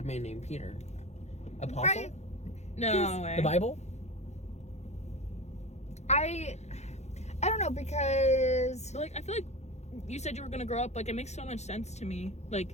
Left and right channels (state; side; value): late; right; 0.32 ms